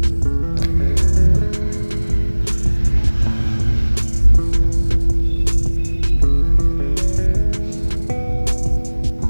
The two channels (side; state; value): both; inverted; correlation -1.00